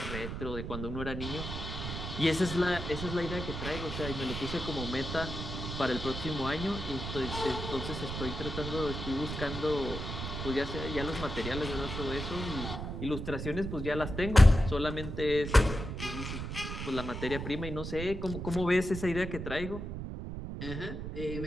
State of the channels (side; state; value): right; noise; rumble, 6 dB below the sound